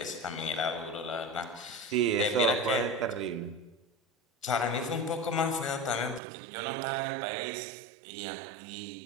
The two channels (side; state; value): left; drops out; at 6.2 s